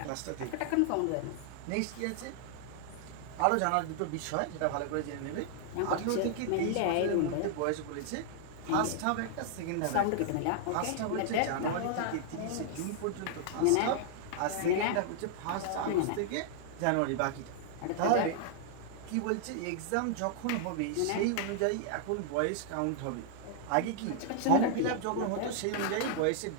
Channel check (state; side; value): different; both; correlation 0.00